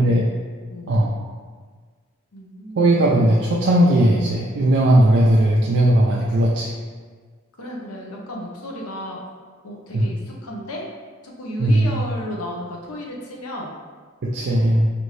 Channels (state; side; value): normal; both; correlation 0.76